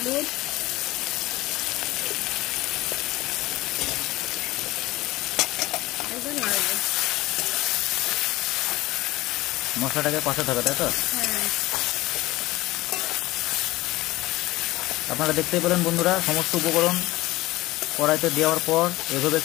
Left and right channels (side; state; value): right; quieter; 18.6 dB